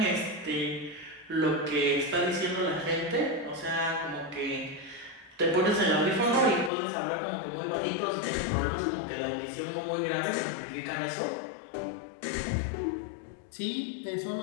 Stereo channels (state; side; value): drops out; right; at 6.7 s